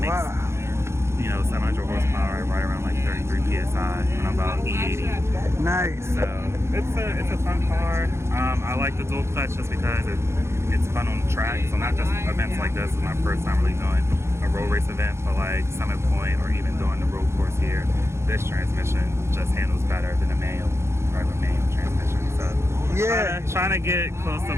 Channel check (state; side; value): late; left; 0.13 ms